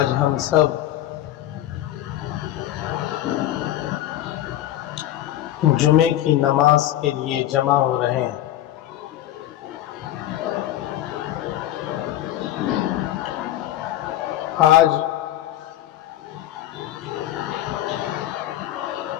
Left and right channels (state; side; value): quieter; right; 13.2 dB